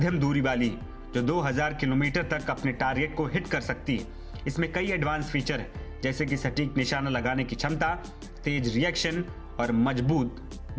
दूरी वाली है जो 2000 किलोमीटर तक अपने टारगेट को हिट कर सकती है। इसमें कई एडवांस फीचर है जैसे कि सटीक निशाना लगाने की क्षमता, तेज रिएक्शन और मजबूत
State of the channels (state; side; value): identical; both; correlation 1.00